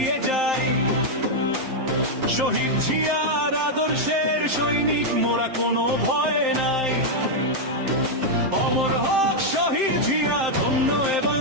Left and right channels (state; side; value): late; left; 7.6 ms